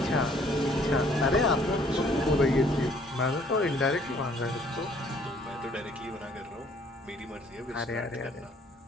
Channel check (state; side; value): normal; both; correlation 0.60